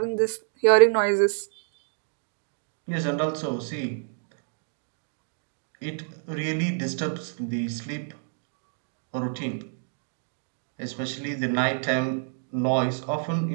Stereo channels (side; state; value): left; silent; digital silence